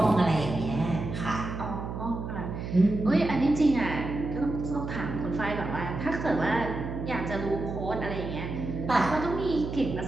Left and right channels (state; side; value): noise; right; hum, 6 dB below the sound